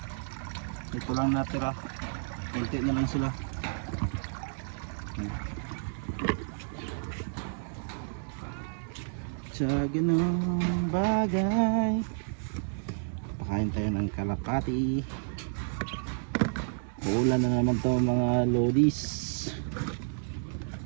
Ito lang natira, kunti na lang sila. Sa ganung bagay, pakain tayo ng kalapati. Uulan na naman to mga lodis.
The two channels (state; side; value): silent; left; digital silence